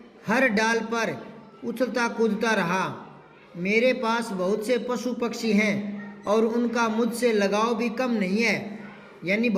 हर डाल पर उछलता कूदता रहा। मेरे पास बहुत से पशु पक्षी हैं और उनका मुझसे लगाव भी कम नहीं है, यानी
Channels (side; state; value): both; identical; correlation 1.00